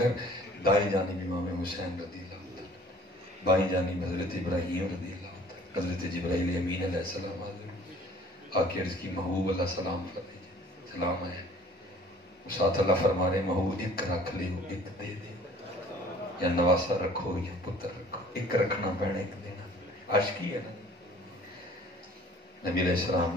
دائیں جانب امام حسین رضی اللہ عنہ, بائیں جانب حضرت ابراہیم رضی اللہ عنہ, حضرت جبرائیل امین علیہ السلام آکے عرض کی محبوب اللہ سلام فرمائیے, سلام ہے. ساتھ اللہ فرما رہے محبوب ایک رکھ لے ایک دے دے, یا نواسا رکھو یا پتر رکھو, ایک رکھنا پینا ایک دینا. عاشقی ہے نا. نبی علیہ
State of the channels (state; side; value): normal; both; correlation 0.52